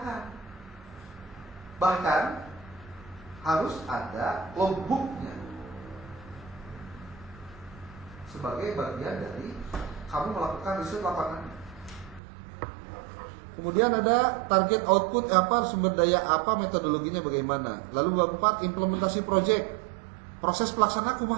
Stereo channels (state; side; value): drops out; left; at 12.2 s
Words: Bahkan harus ada logbooknya sebagai bagian dari kamu melakukan riset lapangan. Kemudian ada target output apa, sumber daya apa, metodologinya bagaimana. Lalu bab 4 implementasi proyek, proses pelaksanaan